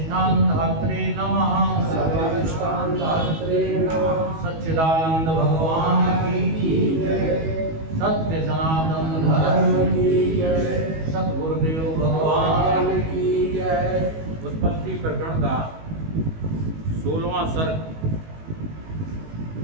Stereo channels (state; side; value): late; left; 19 ms